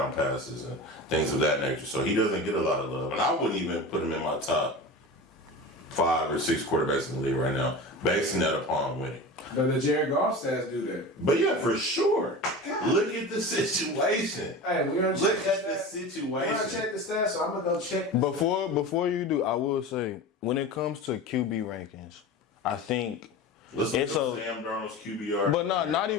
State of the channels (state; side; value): normal; both; correlation 0.31